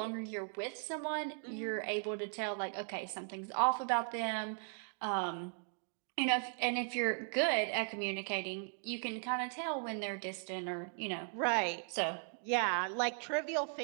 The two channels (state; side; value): silent; left; 53 dB below the other